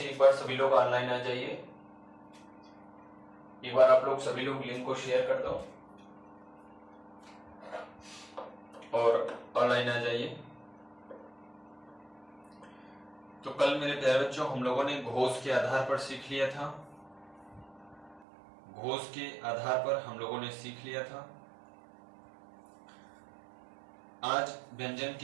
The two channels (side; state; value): left; drops out; at 18.2 s